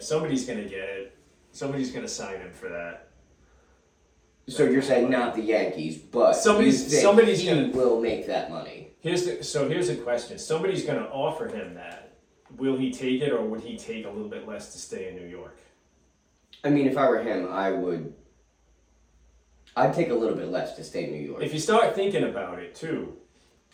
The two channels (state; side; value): identical; both; correlation 1.00